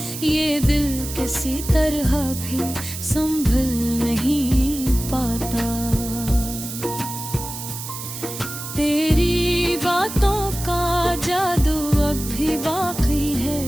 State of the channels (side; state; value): right; noise; hiss, 9 dB below the sound